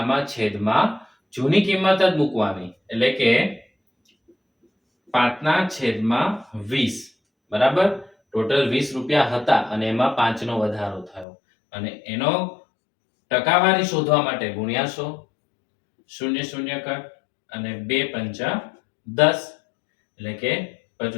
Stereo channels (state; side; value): drops out; right; at 11.2 s